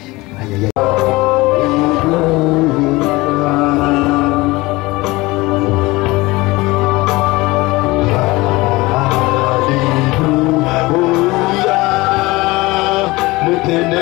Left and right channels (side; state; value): right; quieter; 21.5 dB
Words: Aïe, aïe, aïe.